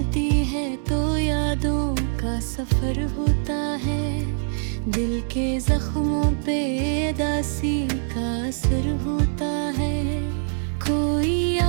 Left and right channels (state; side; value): silent; left; digital silence